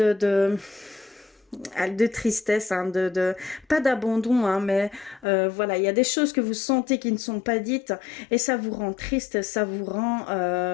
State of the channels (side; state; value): right; drops out; at 5.2 s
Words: tristesse, pas d'abandon, mais voilà, il y a des choses que vous sentez qui ne sont pas dites et ça vous rend triste, ça vous rend,